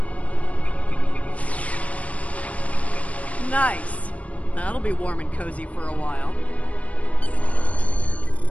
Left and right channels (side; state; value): right; late; 0.066 ms